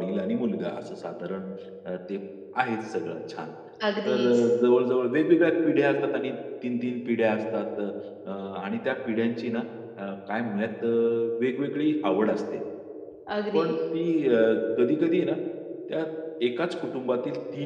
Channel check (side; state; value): both; identical; correlation 1.00